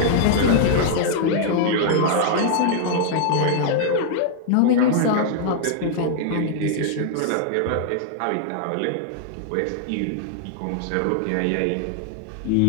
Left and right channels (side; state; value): both; different; correlation -0.01